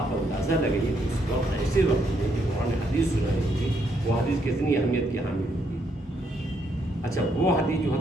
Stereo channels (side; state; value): both; normal; correlation 0.74